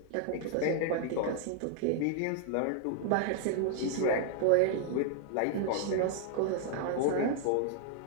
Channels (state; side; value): different; both; correlation 0.00